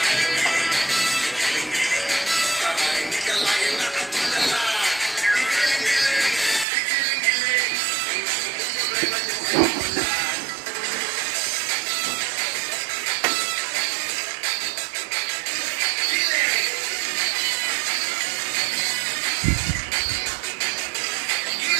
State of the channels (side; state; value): left; drops out; at 6.7 s